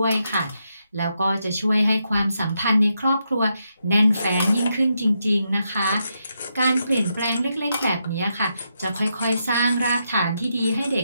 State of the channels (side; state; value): both; inverted; correlation -0.82